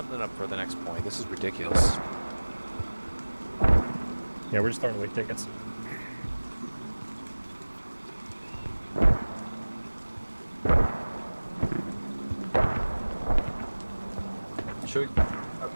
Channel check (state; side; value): inverted; both; correlation -1.00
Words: up for the next point. This is ridiculous. Yeah, we're just throwing away tickets. Should we